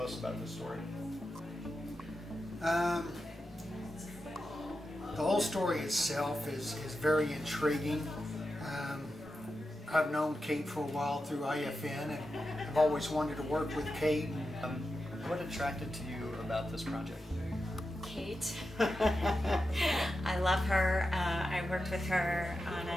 about this story? The whole story itself is very intriguing. I've known Kate for a while through IFN, and I've always wanted to work with Kate. What attracted to you about this project? Kate. I love her. I worked with her on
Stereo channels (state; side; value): normal; both; correlation 0.90